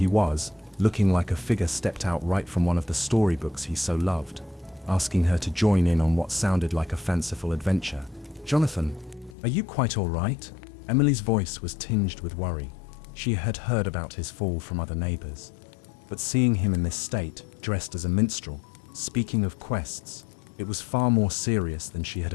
was, looking like a figure stepped out right from one of the storybooks he so loved, asking her to join in on what sounded like a fanciful adventure. "Jonathan, are you quite all right?" Emily's voice was tinged with worry. She had heard about his fall from other neighbors, but seeing him in this state, dressed as a minstrel, speaking of quests, it was far more serious than she had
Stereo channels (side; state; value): right; drops out; at 9.3 s